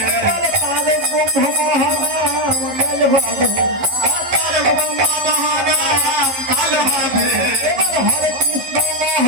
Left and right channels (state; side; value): late; left; 11 ms